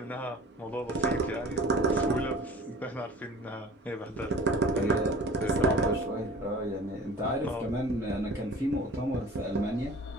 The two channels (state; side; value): normal; both; correlation 0.44